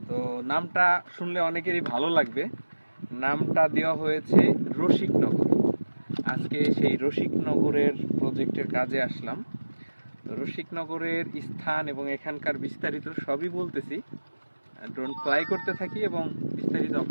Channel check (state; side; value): inverted; both; correlation -1.00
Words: তো নামটা শুনলে অনেকেরই ভালো লাগবে। নামটা দেওয়া হয়েছে রসিকনগর। আজকে সেই রসিকনগরের প্রজেক্টের কাজে আসলাম। তো রসিকনগরের স্থান এবং এখানকার বিস্তারিত সবই বলতেছি। ড্রোন ফ্লাই করতে থাকি এবং বিস্তারিত